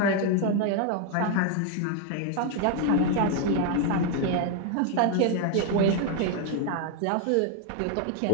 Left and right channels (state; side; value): different; both; correlation 0.01